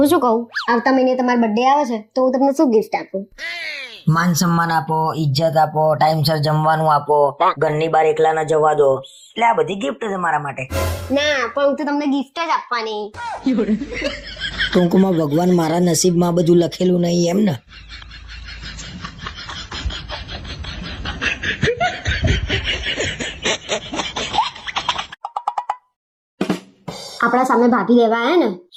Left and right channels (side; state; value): both; identical; correlation 1.00